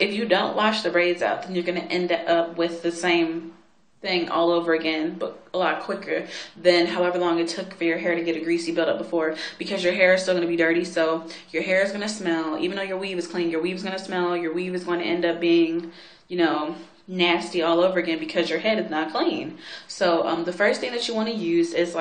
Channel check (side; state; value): both; identical; correlation 1.00